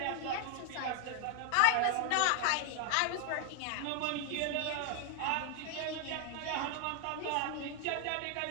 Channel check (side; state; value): both; different; correlation 0.00